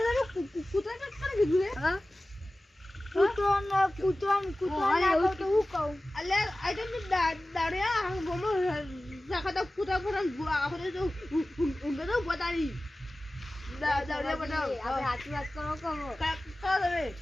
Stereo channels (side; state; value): both; normal; correlation 0.97